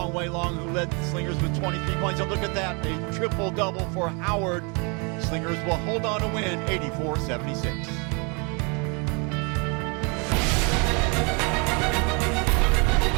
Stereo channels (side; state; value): left; quieter; 32.9 dB